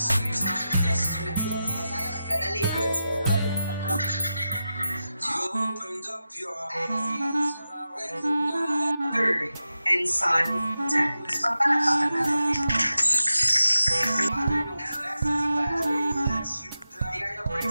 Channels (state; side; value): inverted; both; correlation -0.91